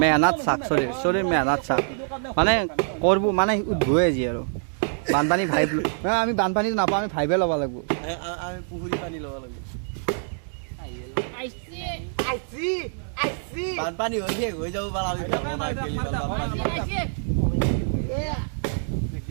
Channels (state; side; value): silent; left; digital silence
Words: মেহনাত চাক চলিৰ মেহনাত চাক মানে কৰিব মানে উদ্ভৱে আজি আৰু বানপানী ভাইব আমি বানপানীটো নাপাওঁ আমি ভাইবে ল'ব লাগিব আমি পুখুৰী পানী ল'ব লাগিব বানপানী হৈ শেষ হৈ যাব পাৰা